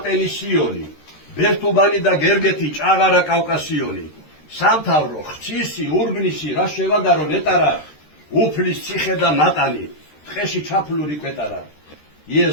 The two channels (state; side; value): late; right; 13 ms